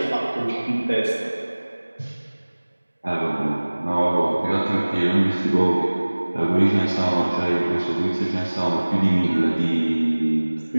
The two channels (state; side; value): inverted; both; correlation -1.00